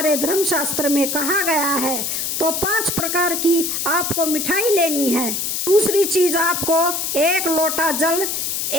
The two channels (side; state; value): left; noise; hiss, 1 dB below the sound